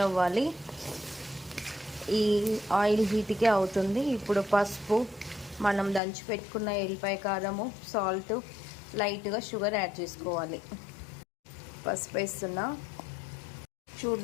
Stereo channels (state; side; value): drops out; right; at 6.0 s